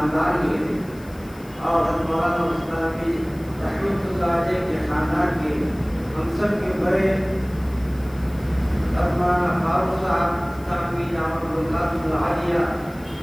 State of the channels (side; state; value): left; noise; hiss, 25 dB below the sound